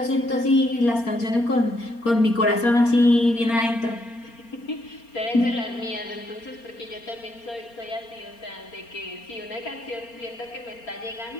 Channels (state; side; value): late; right; 4.3 ms